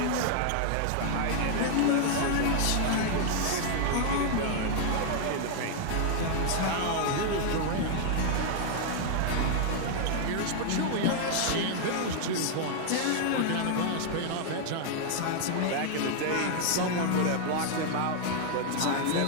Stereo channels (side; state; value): both; different; correlation 0.00